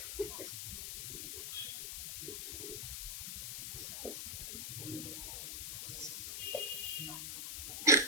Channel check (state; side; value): noise; left; hiss, 4 dB below the sound